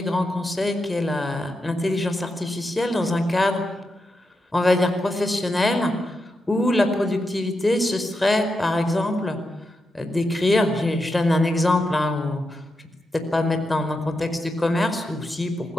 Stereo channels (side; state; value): both; normal; correlation 0.86